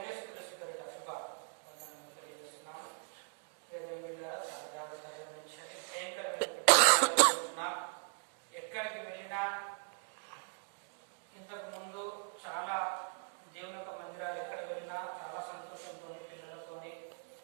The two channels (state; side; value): silent; left; 52 dB below the other